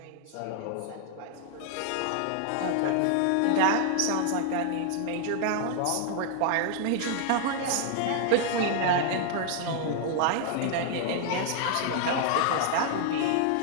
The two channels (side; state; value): both; different; correlation 0.00